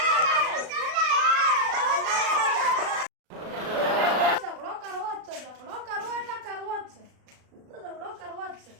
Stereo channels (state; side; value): late; left; 36 ms